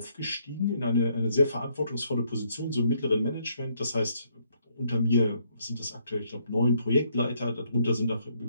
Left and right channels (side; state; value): both; inverted; correlation -0.71